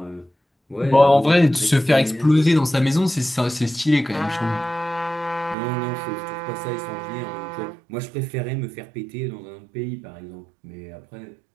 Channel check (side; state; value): left; drops out; at 5.6 s